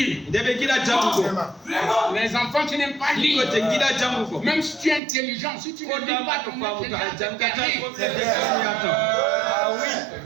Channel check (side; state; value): left; drops out; at 5.0 s